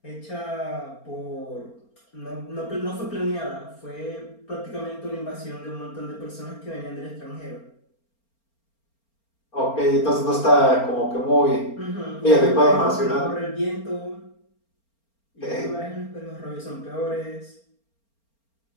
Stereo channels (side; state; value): right; late; 4.4 ms